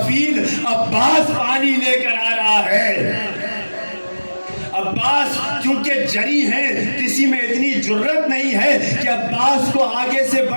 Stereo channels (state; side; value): inverted; both; correlation -1.00